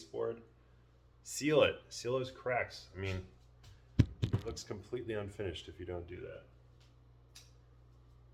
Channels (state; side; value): identical; both; correlation 1.00